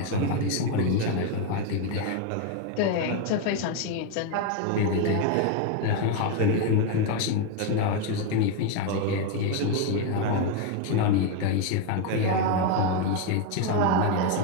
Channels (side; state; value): both; different; correlation 0.01